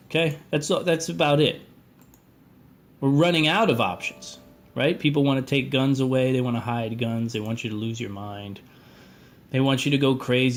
okay? That's about it. We're running out of options, right? People want to take guns away. They want to hide guns. They want you to lose your mind. They want you to go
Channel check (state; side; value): identical; both; correlation 1.00